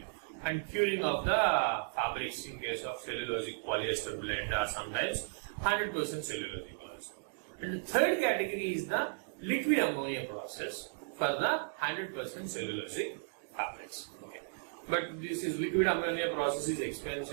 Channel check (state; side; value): silent; left; digital silence